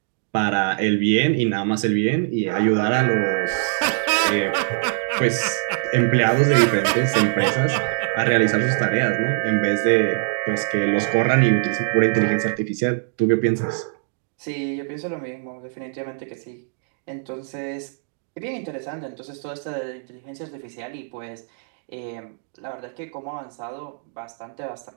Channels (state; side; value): silent; left; digital silence